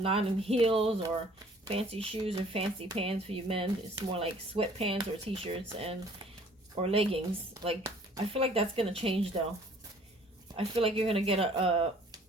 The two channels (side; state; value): both; normal; correlation 0.55